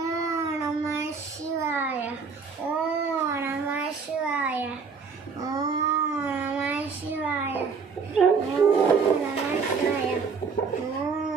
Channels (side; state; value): left; quieter; 5.3 dB